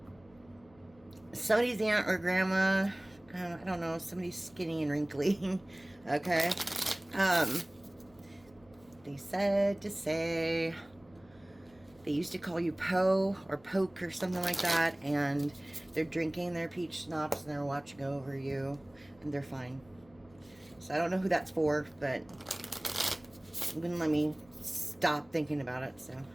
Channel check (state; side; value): noise; left; hum, 28 dB below the sound